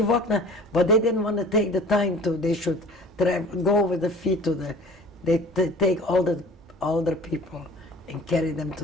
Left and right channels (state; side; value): normal; both; correlation 0.46